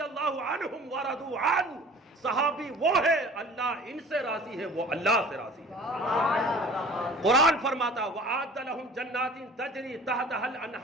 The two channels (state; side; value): normal; both; correlation 0.45